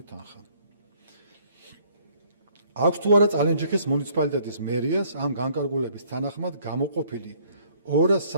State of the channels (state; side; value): inverted; both; correlation -0.61